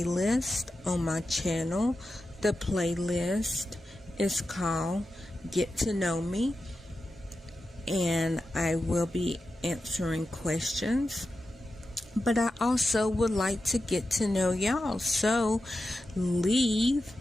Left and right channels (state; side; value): normal; both; correlation 0.91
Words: on my channel. The playlist is called Get to Know Me, and I will be answering questions, but I also would like to get to know y'all, so leave